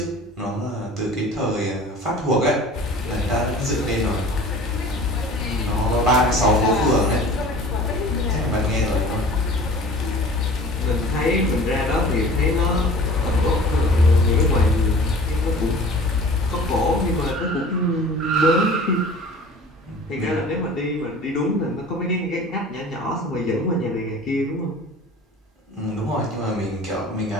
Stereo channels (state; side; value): normal; both; correlation 0.43